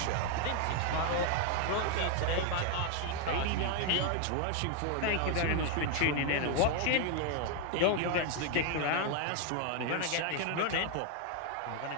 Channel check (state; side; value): different; both; correlation 0.00